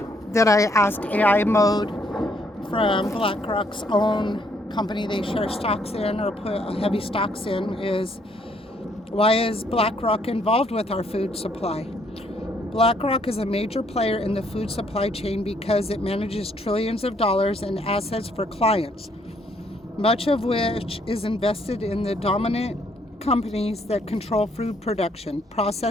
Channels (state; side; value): normal; both; correlation 0.68